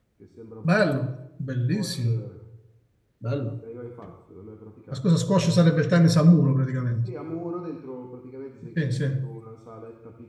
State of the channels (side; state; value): both; identical; correlation 1.00